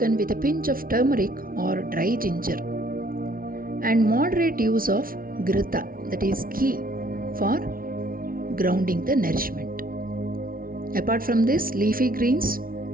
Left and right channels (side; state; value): left; late; 0.42 ms